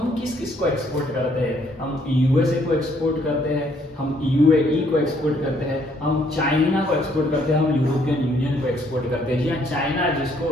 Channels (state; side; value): normal; both; correlation 0.67